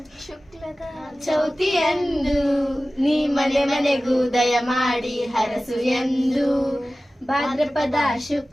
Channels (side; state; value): both; normal; correlation 0.96